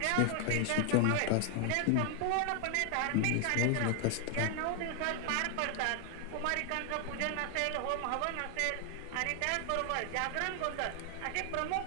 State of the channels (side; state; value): both; different; correlation 0.00